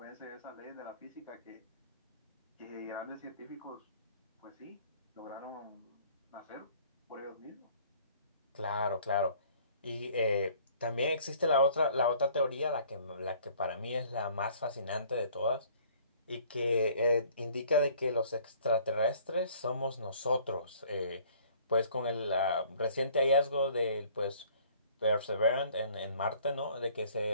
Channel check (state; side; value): inverted; both; correlation -0.55